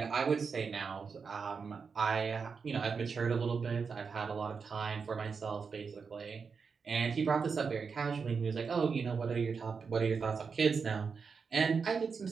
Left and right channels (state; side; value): quieter; left; 5.5 dB